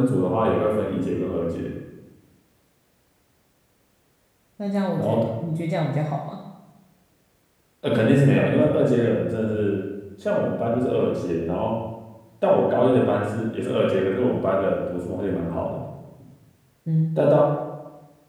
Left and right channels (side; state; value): both; identical; correlation 1.00